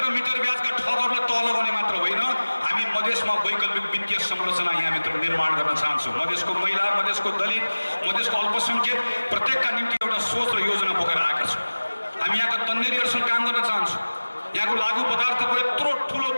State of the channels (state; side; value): inverted; both; correlation -1.00